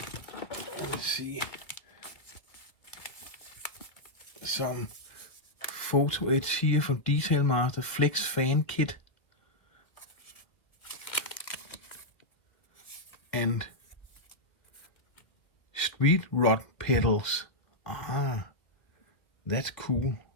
Let's see. Some photo edge here from Detail Master Flex Fan Kit. And street rod pedals. That's cool.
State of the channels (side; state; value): right; late; 1.7 ms